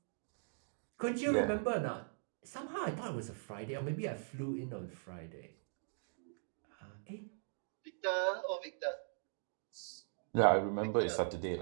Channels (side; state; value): left; silent; digital silence